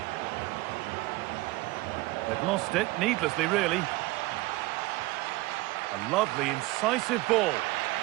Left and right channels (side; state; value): left; quieter; 20.3 dB